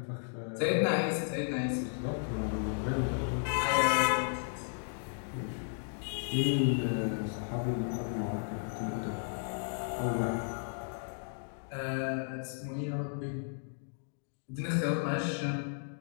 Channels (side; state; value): right; silent; digital silence